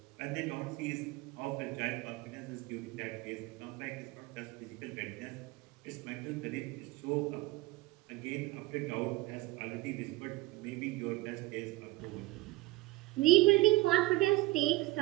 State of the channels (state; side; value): quieter; left; 19.6 dB